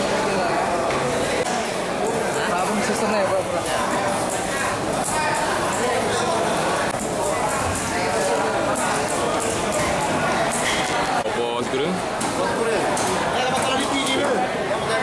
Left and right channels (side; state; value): both; identical; correlation 1.00